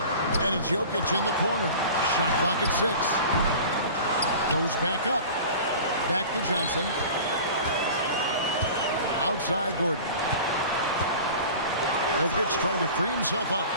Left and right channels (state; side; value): inverted; both; correlation -0.38